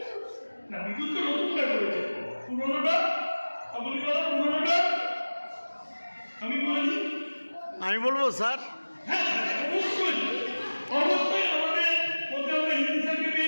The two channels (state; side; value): inverted; both; correlation -1.00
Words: না? বিদ্যুৎ তো নতুনটা করেছে, পুরোনোটা কাবুলিওয়ালা পুরোনোটা আমি বলেছি। আমি বলবো স্যার। হ্যাঁ অবশ্যই অবশ্যই আমাদের মধ্যে আমরা হিন্দি স্যারকে